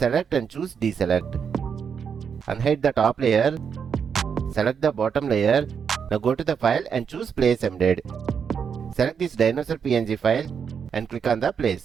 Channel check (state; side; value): quieter; left; 6.9 dB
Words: and choose deselect. Unhide the top layer. Select the bottom layer. Now go to the file and choose place embed. Select this Dinosaur PNG file and click on the place.